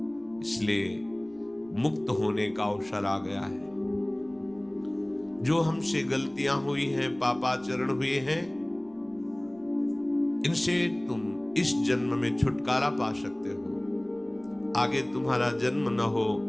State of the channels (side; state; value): right; noise; rumble, 28 dB below the sound